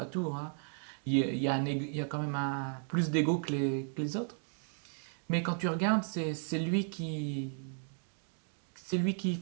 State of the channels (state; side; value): silent; left; 55 dB below the other